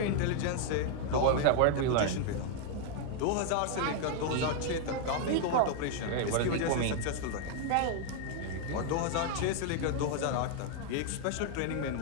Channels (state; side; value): different; both; correlation 0.00